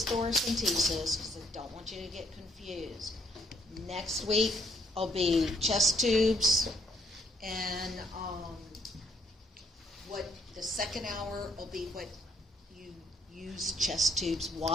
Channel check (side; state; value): both; normal; correlation 0.69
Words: thoracentesis because I don't want you to get confused. Next week will be chest tubes, and what the second hour will be what you use chest tubes,